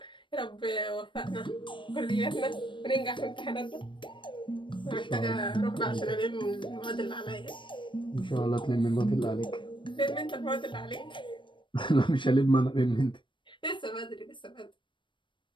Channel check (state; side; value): late; right; 0.24 ms